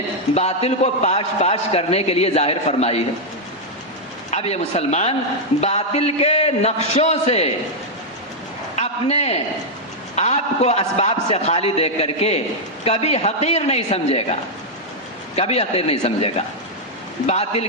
باطل کو پاش کرنے کے لیے ظاہر فرمائی ہے. اب یہ مسلمان باطل کے نقشوں سے اپنے آپ کو اسباب سے خالی دیکھ کر کے کبھی حقیر نہیں سمجھے گا, کبھی حقیر نہیں سمجھے گا. باطل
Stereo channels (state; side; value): normal; both; correlation -0.03